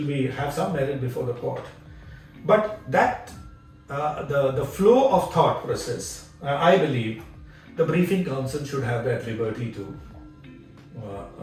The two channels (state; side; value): identical; both; correlation 1.00